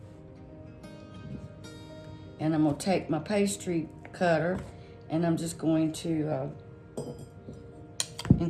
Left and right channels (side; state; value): both; identical; correlation 1.00